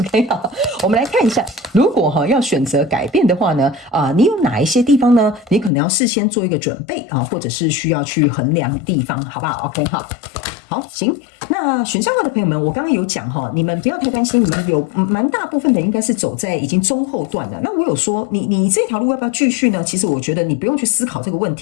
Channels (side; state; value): right; drops out; at 5.7 s